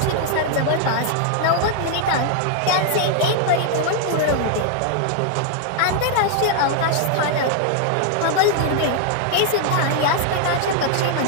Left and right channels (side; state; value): both; different; correlation 0.00